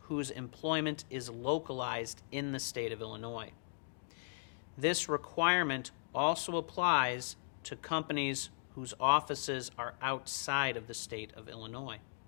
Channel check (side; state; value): right; silent; digital silence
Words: whose employment is localized in the state of Illinois. This requirement also applies to companies whose offices are outside of the state of Illinois.